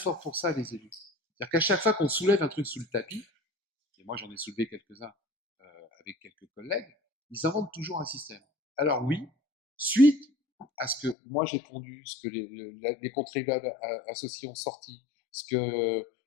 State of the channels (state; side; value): drops out; right; at 11.2 s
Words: pour ça, les élus. C'est-à-dire qu'à chaque fois qu'on soulève un truc sous le tapis, et moi j'en ai soulevé quelques-uns avec quelques collègues, ils inventent toujours un système. Alors oui, suite à ce que moi j'ai pondu, ce que les contribuables associés ont sorti, ce que